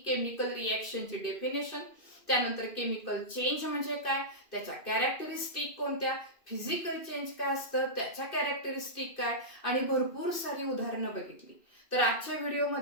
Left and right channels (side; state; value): right; late; 2.6 ms